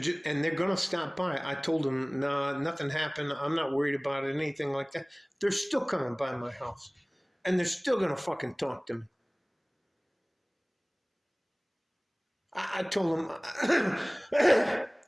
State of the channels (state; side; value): identical; both; correlation 1.00